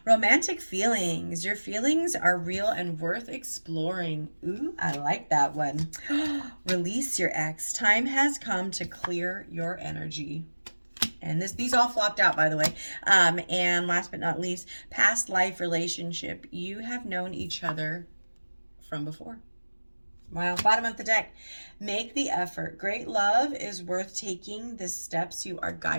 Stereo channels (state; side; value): inverted; both; correlation -1.00